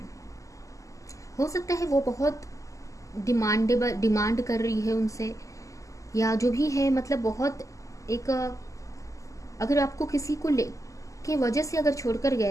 है वो बहुत डिमांड कर रही है उनसे, या जो भी है, मतलब बहुत एक, अगर आपको किसी को के वजह से अगर छोड़कर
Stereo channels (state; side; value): late; right; 0.16 ms